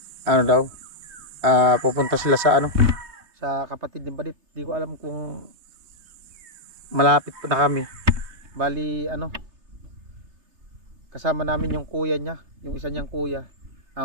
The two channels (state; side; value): late; left; 3.3 ms